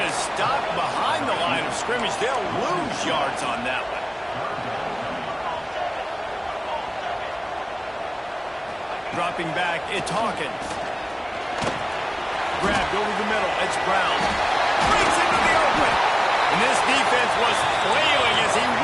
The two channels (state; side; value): identical; both; correlation 1.00